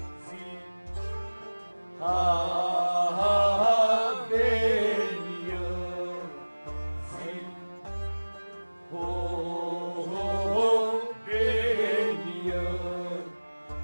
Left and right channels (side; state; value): both; inverted; correlation -1.00